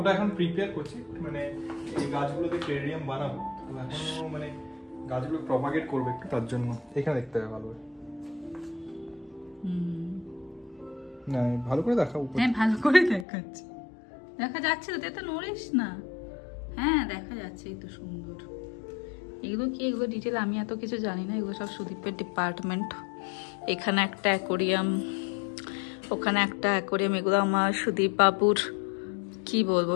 এখন প্রিপেয়ার করছি, মানে এই গাছগুলোতে টেরিয়াম বানাবো, এখন মানে গাছগুলো প্রপাগেট করবে একটু, তার জন্য এখানে দেখতে হবে ভালো করে। না ভালো করে দেখা, উপরে। হ্যাঁ ভালো করে দেখাচ্ছি, দেখা যাচ্ছে তো, তুই তো নড়িস না, হ্যাঁ দেখা যাচ্ছে, এই তো সুন্দর। এগুলো কি, এগুলো ডিটেল আমি এত কিছু জানি না, এগুলো সব সুদীপের ডিপার্টমেন্ট। এখানে একটা অ্যাকোরিয়াম, ওখানে একটা অ্যাকোরিয়াম, এগুলো আমার সুদীপ বাবুর কি বলবো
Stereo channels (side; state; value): right; drops out; at 13.2 s